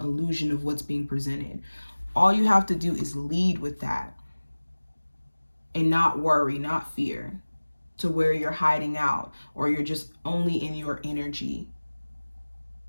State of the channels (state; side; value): inverted; both; correlation -1.00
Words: of what's being presented. All you have to do is lead with that and not worry, not fear, to where you're hiding out or you're just only in your energy.